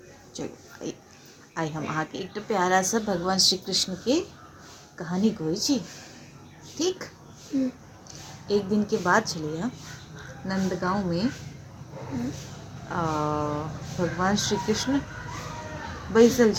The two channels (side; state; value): both; identical; correlation 1.00